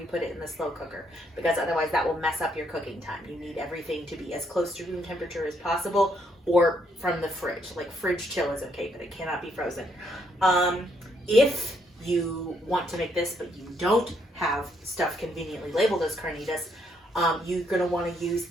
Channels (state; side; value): normal; both; correlation 0.73